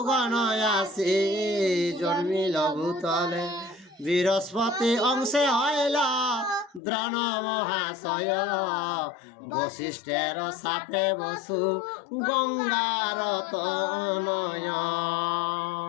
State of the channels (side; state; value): right; drops out; at 6.8 s